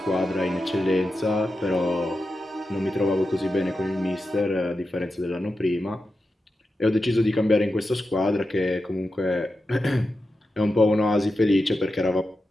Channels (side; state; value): both; normal; correlation 0.90